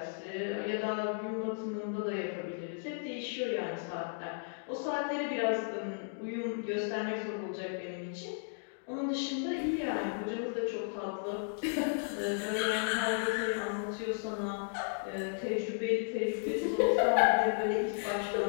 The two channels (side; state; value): right; silent; digital silence